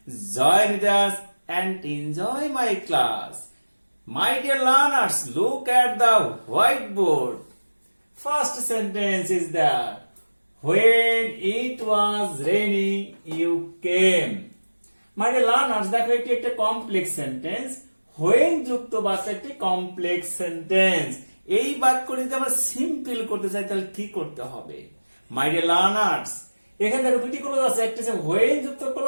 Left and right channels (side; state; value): both; inverted; correlation -1.00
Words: join with us and enjoy my class. My dear learners, look at the whiteboard. First sentence is that when it was raining, you came. My dear learners, দেখো এটি একটা complex sentence. when যুক্ত বাক্য একটি complex sentence. এই বাক্যটি যদি আমরা সিম্পল করতে চাই তাহলে কি করতে হবে? মাই ডিয়ার লার্নার্স, এখানে দেখো দুটি ক্লোজ আছে, একটা হচ্ছে when যুক্ত